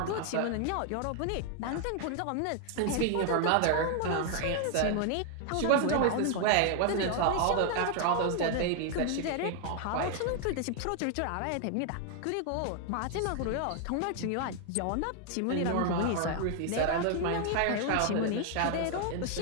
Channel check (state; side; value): different; both; correlation 0.00